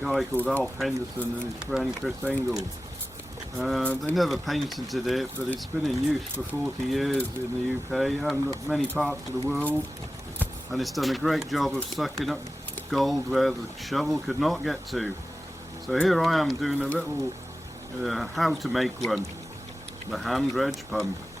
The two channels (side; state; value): both; normal; correlation 0.95